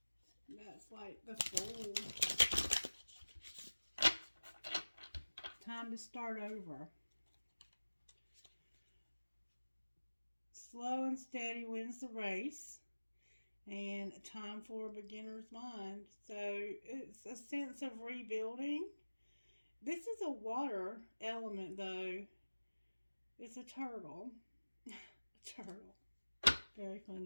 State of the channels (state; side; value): inverted; both; correlation -1.00